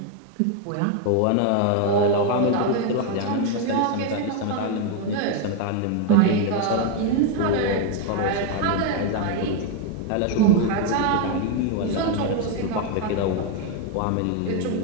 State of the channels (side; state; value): both; different; correlation 0.01